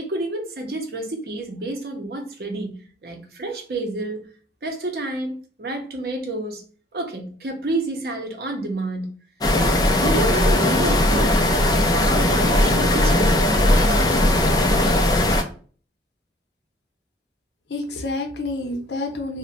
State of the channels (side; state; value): both; normal; correlation 0.55